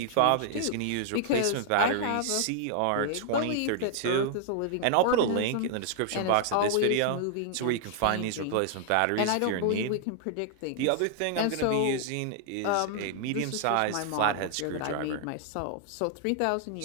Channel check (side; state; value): both; different; correlation 0.00